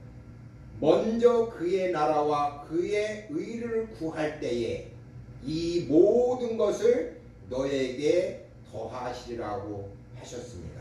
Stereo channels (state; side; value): identical; both; correlation 1.00